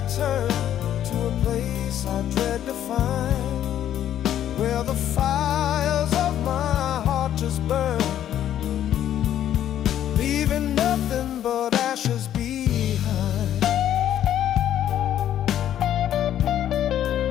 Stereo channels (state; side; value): quieter; right; 11.0 dB